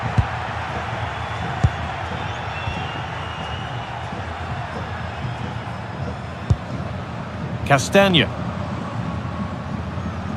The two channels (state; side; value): identical; both; correlation 1.00